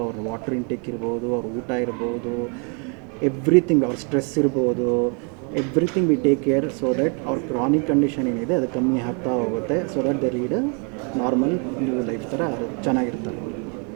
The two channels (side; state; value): left; quieter; 37.1 dB